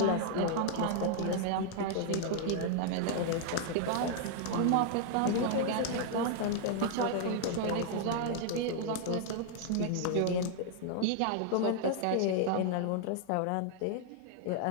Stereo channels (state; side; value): different; both; correlation 0.00